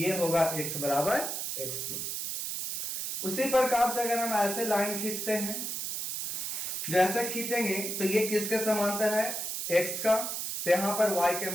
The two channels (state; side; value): noise; right; hiss, 3 dB below the sound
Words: होगा x बराबर x2। उसी प्रकार से अगर हम ऐसे लाइन खींचते हैं, जैसे खींचेंगे तो ये किसके समांतर है x का, तो यहां पर y के